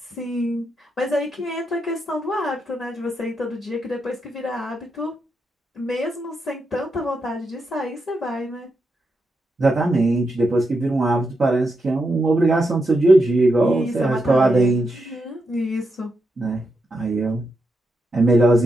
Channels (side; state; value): both; normal; correlation 0.84